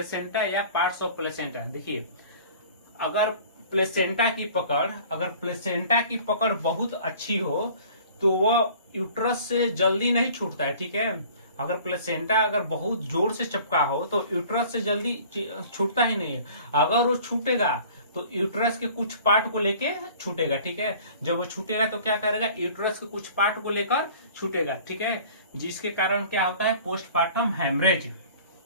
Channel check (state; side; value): inverted; both; correlation -0.48